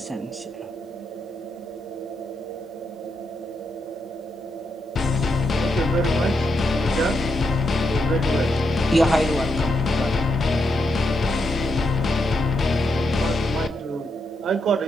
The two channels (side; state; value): both; normal; correlation 0.82